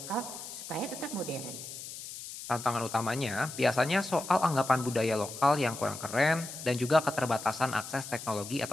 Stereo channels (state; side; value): noise; left; hiss, 10 dB below the sound